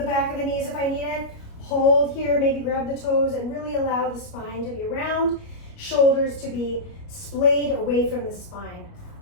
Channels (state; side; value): late; right; 29 ms